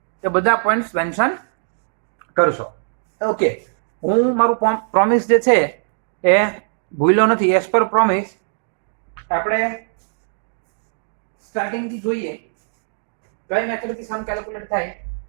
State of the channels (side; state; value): left; silent; digital silence